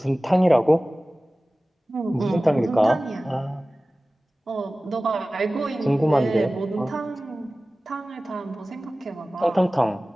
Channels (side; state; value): both; normal; correlation 0.97